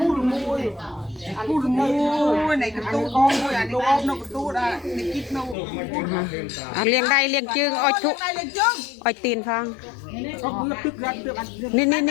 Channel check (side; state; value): right; drops out; at 5.6 s